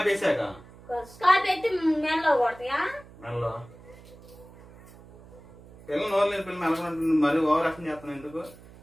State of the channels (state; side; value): noise; right; hum, 21 dB below the sound